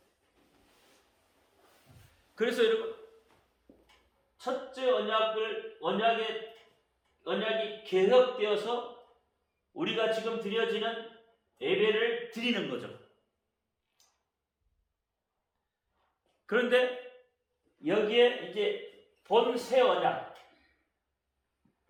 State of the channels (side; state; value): both; identical; correlation 1.00